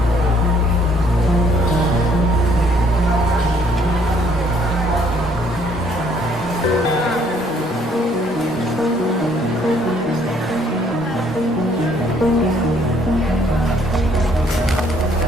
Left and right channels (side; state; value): both; normal; correlation 0.64